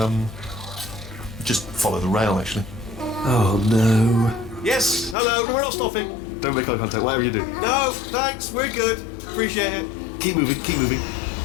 Just follow the rail, actually. Oh no. Yes, hello, we're not stopping. Don't make eye contact, whatever you do. No, thanks, we're good. Appreciate it. Keep moving, keep moving.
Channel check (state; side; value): drops out; right; at 5.2 s